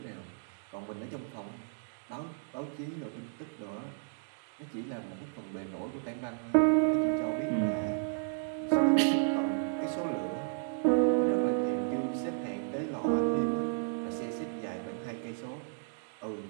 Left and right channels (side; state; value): left; silent; digital silence